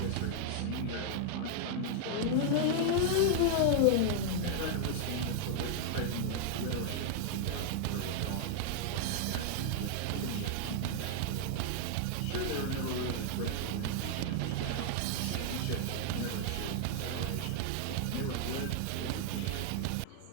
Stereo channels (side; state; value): both; different; correlation 0.00